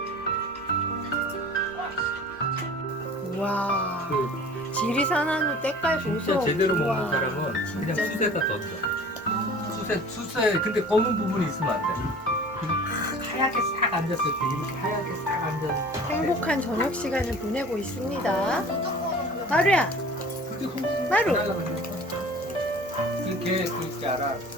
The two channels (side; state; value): both; normal; correlation 0.44